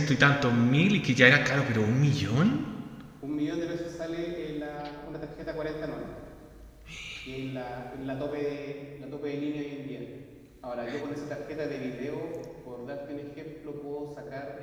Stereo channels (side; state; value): both; identical; correlation 1.00